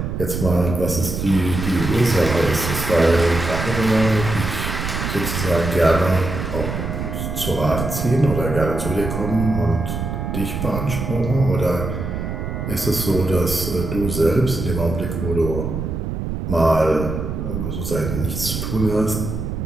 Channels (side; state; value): right; noise; rumble, 4 dB below the sound